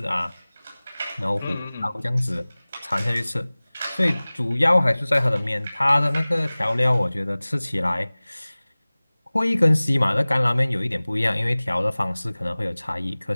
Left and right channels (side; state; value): both; inverted; correlation -0.99